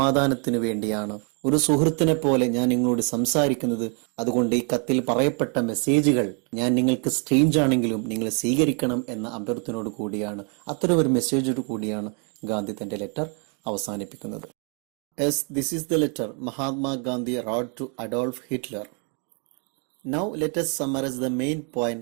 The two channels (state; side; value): quieter; left; 38.5 dB